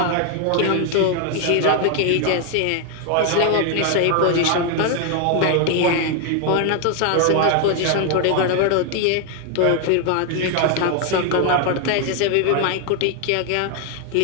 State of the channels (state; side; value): different; both; correlation 0.01